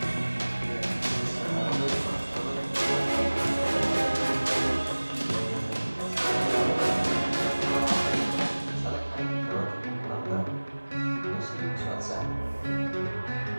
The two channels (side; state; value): both; inverted; correlation -1.00